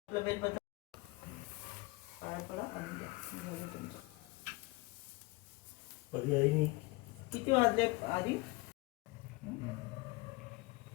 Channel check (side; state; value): right; quieter; 23.3 dB